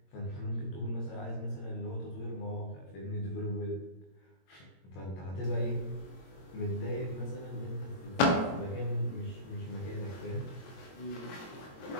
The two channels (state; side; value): late; right; 22 ms